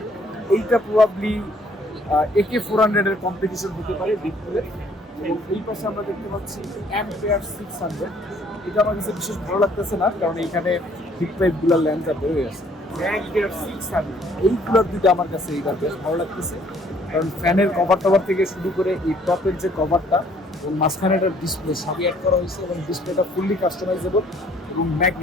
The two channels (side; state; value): both; normal; correlation 0.61